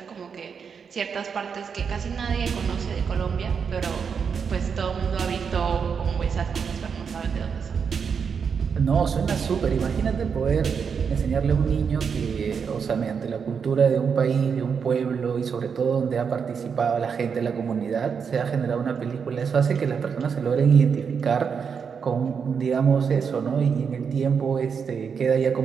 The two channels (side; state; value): left; quieter; 6.4 dB